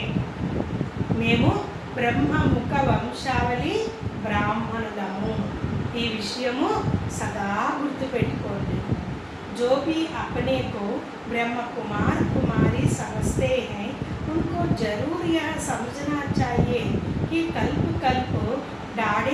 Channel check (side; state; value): both; identical; correlation 1.00